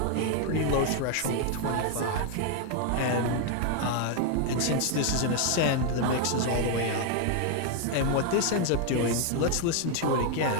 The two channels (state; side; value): different; both; correlation 0.01